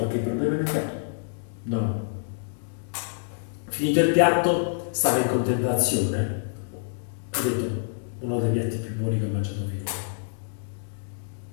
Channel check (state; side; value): silent; right; digital silence